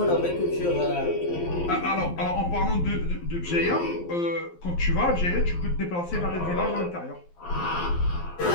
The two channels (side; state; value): right; late; 11 ms